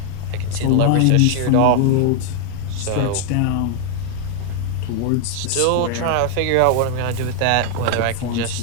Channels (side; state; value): both; different; correlation 0.00